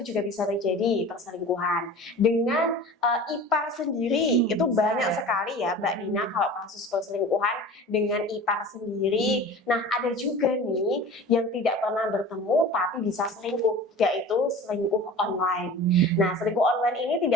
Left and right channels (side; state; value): both; normal; correlation 0.38